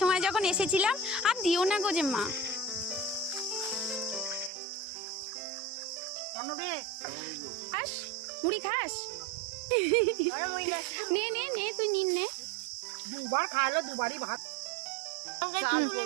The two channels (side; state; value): left; drops out; at 4.5 s